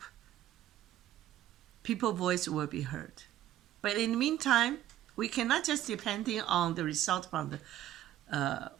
people's voice will be heard. But in the meantime, we cannot just depending on the result from the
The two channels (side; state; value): left; quieter; 12.8 dB